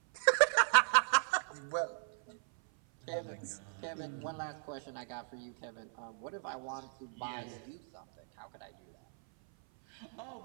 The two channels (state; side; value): silent; left; 53 dB below the other